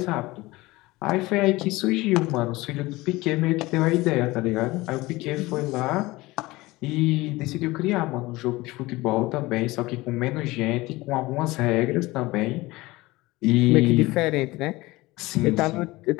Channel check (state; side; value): quieter; right; 20.4 dB